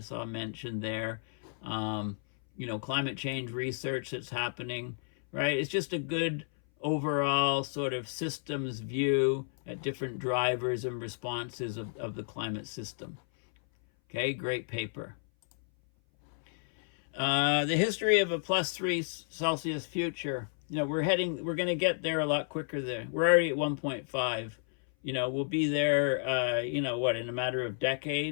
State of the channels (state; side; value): silent; right; 57 dB below the other